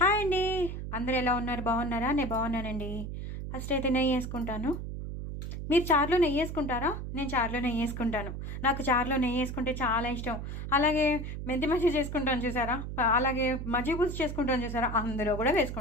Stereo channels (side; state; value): right; noise; hum, 6 dB below the sound